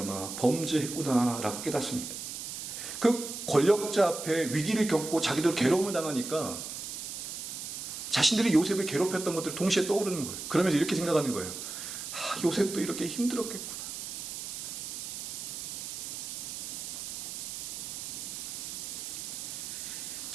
범죄했구나 라고 깨닫습니다. 그 권력자 앞에 위기를 겪고 자기들 괴로움을 당하니까 자신들이 요셉을 괴롭혔던 것들이 동시에 떠오르는 거예요. 그러면서 이렇게 생각하는 거예요. 요셉도 이렇게 힘들었겠구나.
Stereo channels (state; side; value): noise; right; hiss, 7 dB below the sound